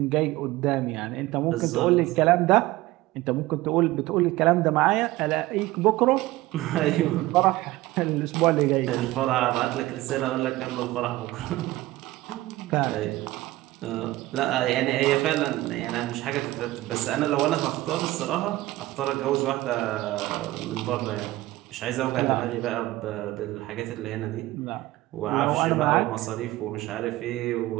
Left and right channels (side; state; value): left; quieter; 17.8 dB